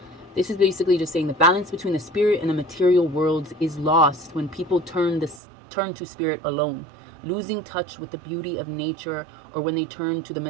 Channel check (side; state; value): left; drops out; at 5.4 s